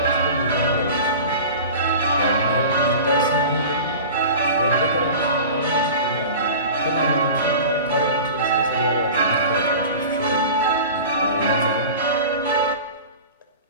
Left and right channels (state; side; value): inverted; both; correlation -0.36